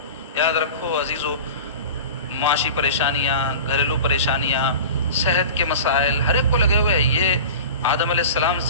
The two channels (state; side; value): inverted; both; correlation -0.34